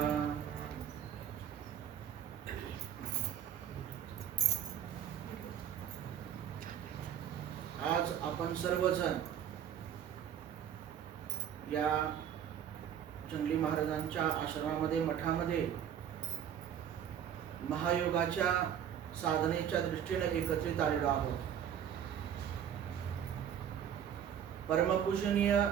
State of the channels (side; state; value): left; quieter; 9.3 dB